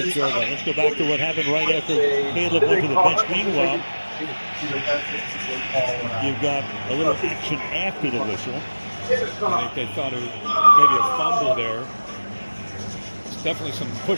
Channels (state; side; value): inverted; both; correlation -1.00